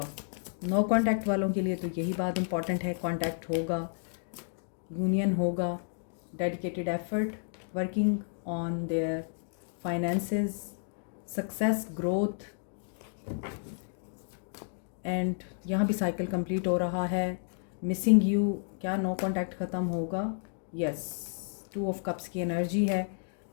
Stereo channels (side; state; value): right; silent; digital silence